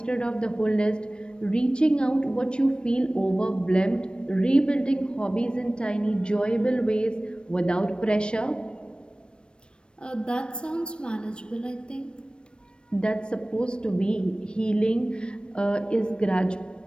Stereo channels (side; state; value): right; late; 0.055 ms